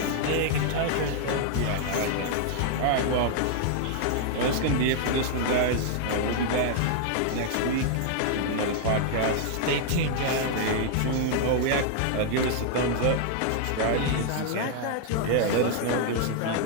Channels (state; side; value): different; both; correlation 0.00